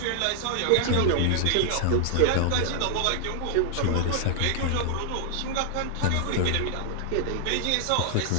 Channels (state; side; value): different; both; correlation 0.00